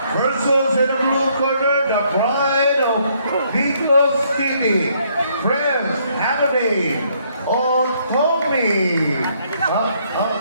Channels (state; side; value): inverted; both; correlation -0.69